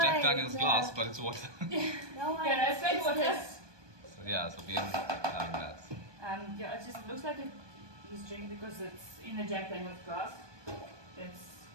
Jack way, Daniel's no. glass, but it's water. No, Yeah, that's like what is. So yeah, so we are having that. Yeah, it just looks like he's drinking because it's in a Jack Daniel's glass. It's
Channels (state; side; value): late; left; 1.2 ms